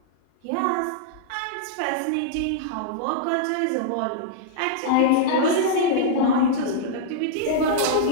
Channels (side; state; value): both; different; correlation -0.02